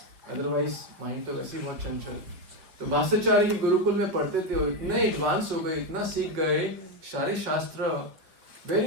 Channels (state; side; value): late; left; 5.5 ms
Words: Otherwise mind तो वैसे ही बहुत चंचल। तो भाष्याचार्य के गुरुकुल में पढ़ते थे और इतने एडवांस हो गए, इतना सीख गए सारे शास्त्र,